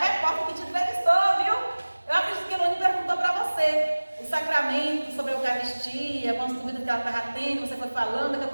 que te entrevistou, viu? Eu acredito que a Eloane perguntou para você o sacramento sobre a Eucaristia, com as dúvidas que ela estava tendo, você foi falando, daqui a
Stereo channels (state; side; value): inverted; both; correlation -1.00